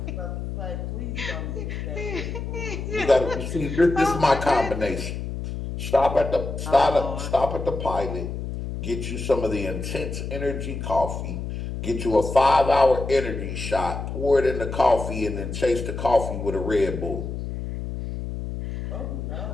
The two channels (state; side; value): noise; left; hum, 6 dB below the sound